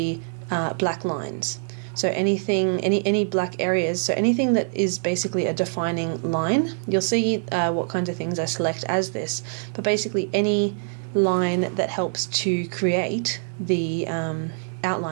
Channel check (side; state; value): left; silent; digital silence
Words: black lines. So anything, any black areas, so anything that is basically a defining line, you'll see what kinds of things I select as this, but basically any line that helps to create the